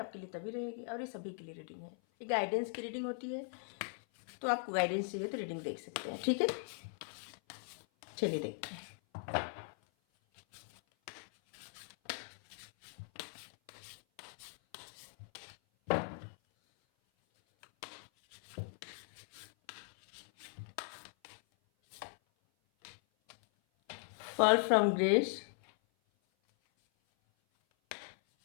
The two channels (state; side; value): silent; right; 52 dB below the other